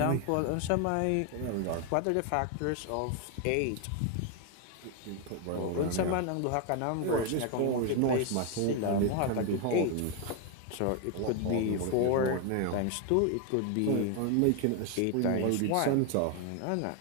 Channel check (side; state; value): both; different; correlation 0.01